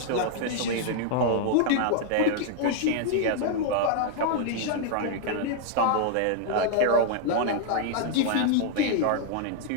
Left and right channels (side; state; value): both; different; correlation 0.00